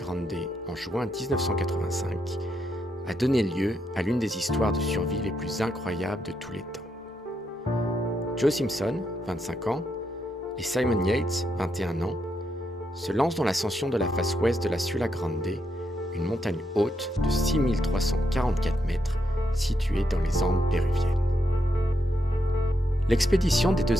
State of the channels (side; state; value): both; normal; correlation 0.80